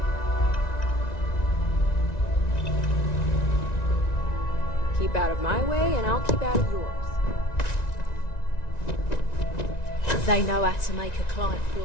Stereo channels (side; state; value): right; late; 1.9 ms